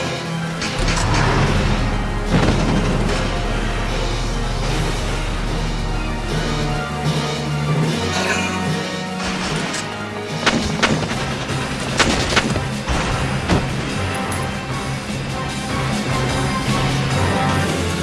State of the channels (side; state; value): both; identical; correlation 1.00